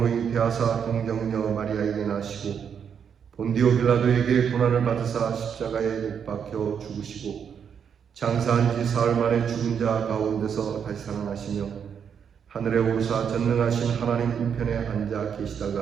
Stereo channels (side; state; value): left; quieter; 7.5 dB